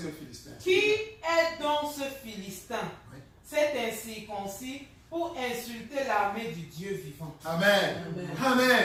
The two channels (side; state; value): both; identical; correlation 1.00